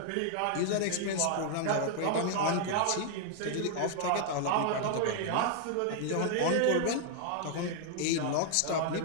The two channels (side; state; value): both; different; correlation 0.00